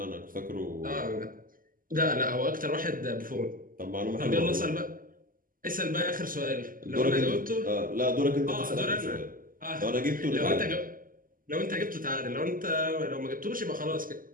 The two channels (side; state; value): left; late; 0.41 ms